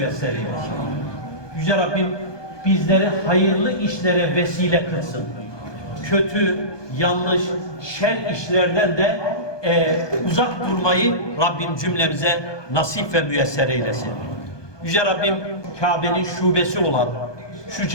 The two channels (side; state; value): right; late; 1.2 ms